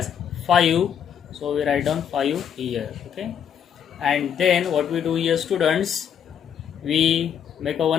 5, so we write down 5 here. Okay, and then what we do here students, we make a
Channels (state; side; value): quieter; right; 8.4 dB